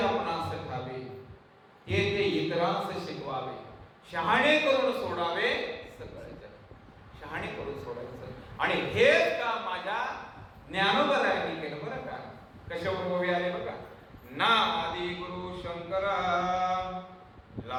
ठावे ते ते इतरांस शिकवावे, शहाणे करून सोडावे सगळे जग. शहाणे करून सोडायचं. आणि हेच का माझ्या ज्ञानोबरायांनी केलं बरं का. कशावर ओवी आले बघा, ना आदि गुरु शंकरा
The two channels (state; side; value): identical; both; correlation 1.00